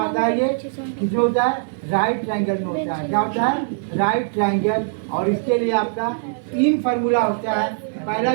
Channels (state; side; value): silent; left; 56 dB below the other